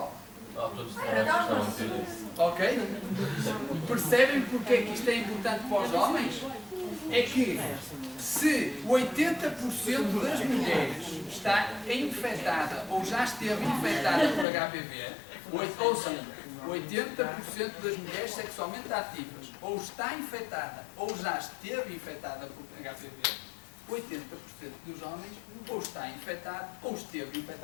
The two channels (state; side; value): drops out; right; at 14.5 s